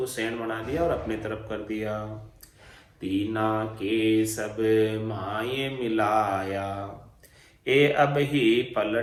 सैन बना दिया और अपने तरफ कर दिया। तीना के सब माये मिलाया, ए अब ही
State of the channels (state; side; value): identical; both; correlation 1.00